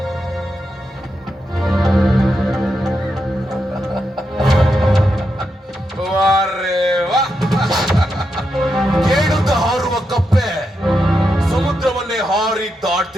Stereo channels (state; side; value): normal; both; correlation 0.85